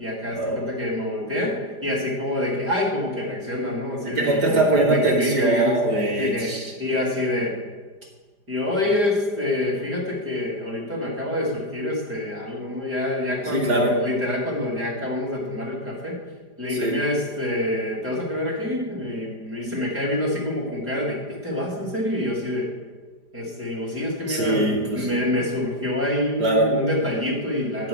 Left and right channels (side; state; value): left; late; 5.0 ms